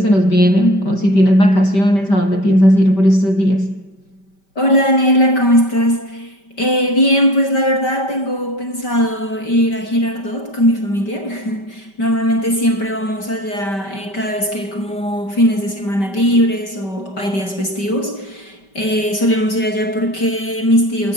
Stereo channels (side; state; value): right; late; 5.1 ms